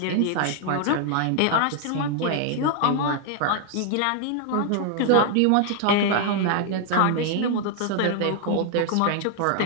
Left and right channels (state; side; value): different; both; correlation 0.00